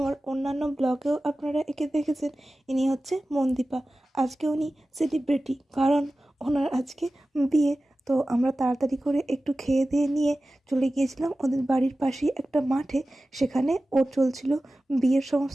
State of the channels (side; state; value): both; normal; correlation 0.95